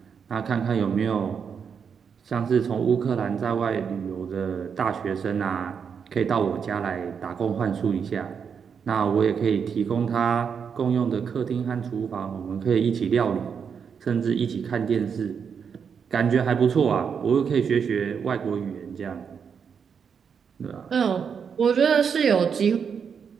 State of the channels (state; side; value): quieter; left; 6.7 dB